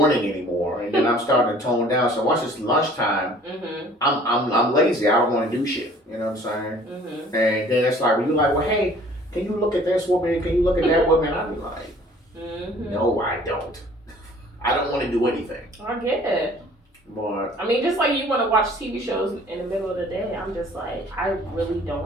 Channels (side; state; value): both; normal; correlation 0.52